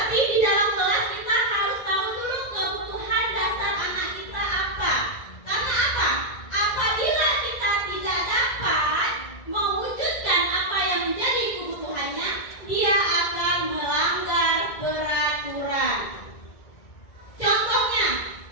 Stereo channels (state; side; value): late; right; 2.0 ms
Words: di dalam kelas kita harus tahu dulu kebutuhan dasar anak kita apa. Karena apa? Apabila kita tidak dapat mewujudkan apa yang menjadi kebutuhannya, dia akan melanggar peraturan. Contohnya,